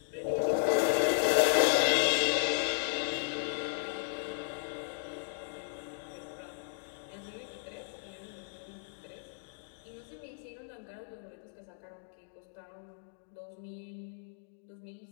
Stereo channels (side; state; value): right; silent; digital silence